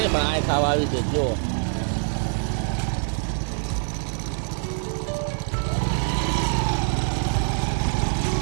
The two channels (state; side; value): silent; left; 55 dB below the other